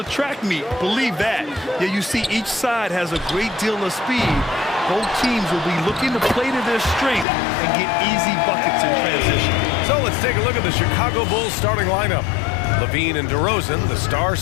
track meet. Believe that. Yeah, you see each side has a great deal of speed. Both teams will be looking to play to their strength and get easy buckets in transition. So let's take a look at the Chicago Bulls starting lineup. Levine and DeRozan, the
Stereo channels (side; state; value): right; drops out; at 7.2 s